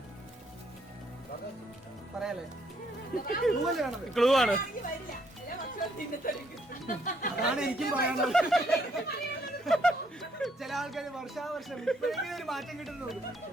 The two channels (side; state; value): both; normal; correlation 0.70